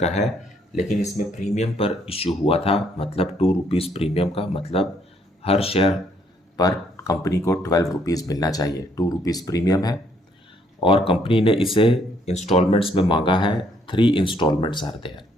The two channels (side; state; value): both; normal; correlation 0.68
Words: है, लेकिन इसमें premium पर issue हुआ था, मतलब 2 रुपीज प्रीमियम का, मतलब हर शेयर पर कंपनी को 12 रुपीज मिलना चाहिए। 2 रुपीज प्रीमियम है और कंपनी ने इसे इंस्टॉलमेंट्स में मांगा है। 3 इंस्टॉलमेंट्स आर देयर।